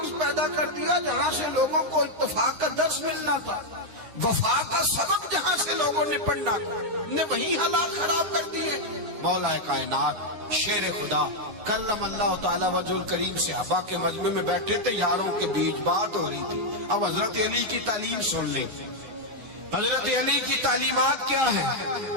پیدا کر دیا جہاں سے لوگوں کو اتفاق کا درس ملنا تھا, وفا کا سبق جہاں سے لوگوں نے پڑھنا نے وہی حالات خراب کر دیے. مولا کائنات شیر خدا کلم اللہ تعالیٰ وجہ الکریم صحابہ کے مجمع میں بیٹھے تھے, یاروں کے بیچ بات ہو رہی تھی. اب حضرت علی کی تعلیم سن لیں. حضرت علی کی تعلیمات کیا ہیں؟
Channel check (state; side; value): late; left; 9.6 ms